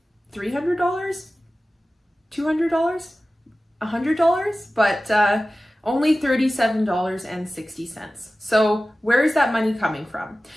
$300, $200, $100, but only $37.60. So where is that money coming from?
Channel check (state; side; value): normal; both; correlation 0.96